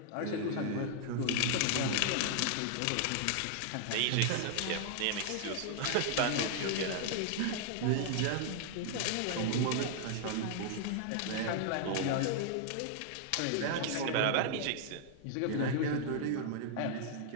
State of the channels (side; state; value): both; different; correlation -0.01